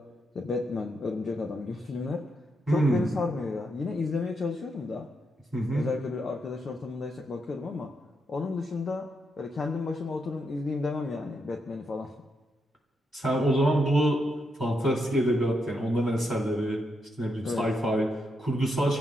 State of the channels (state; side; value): normal; both; correlation 0.81